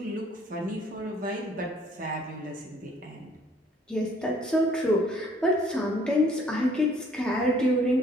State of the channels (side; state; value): both; normal; correlation 0.60